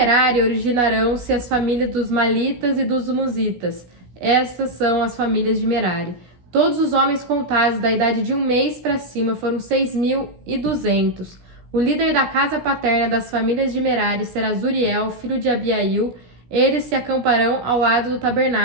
originarão-se as famílias dos Malitas e dos Musitas. Estas são as famílias de Merari. Todos os homens contados da idade de 1 mês para cima foram 6.200. O líder da casa paterna das famílias de Merari será Zuriel, filho de Abiail. Eles se acamparão ao lado do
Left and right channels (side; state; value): left; late; 16 ms